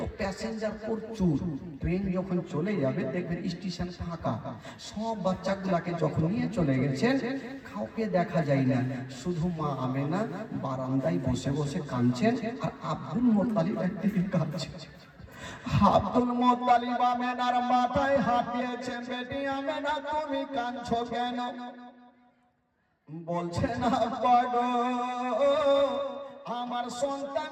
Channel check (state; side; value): identical; both; correlation 1.00